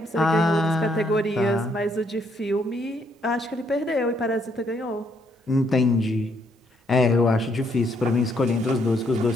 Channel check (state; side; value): normal; both; correlation 0.72